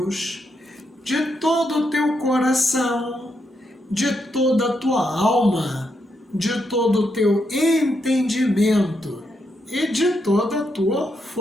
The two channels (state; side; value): normal; both; correlation 0.81